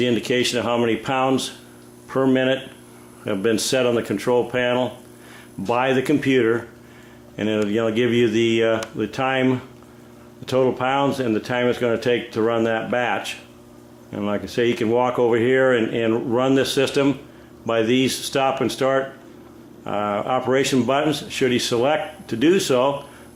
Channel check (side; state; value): both; identical; correlation 1.00